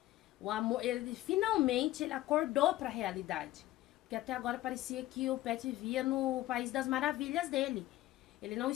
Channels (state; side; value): quieter; right; 15.9 dB